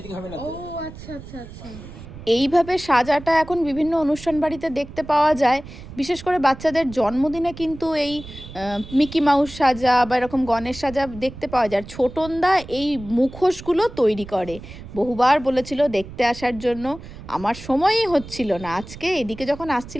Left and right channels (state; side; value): noise; right; rumble, 15 dB below the sound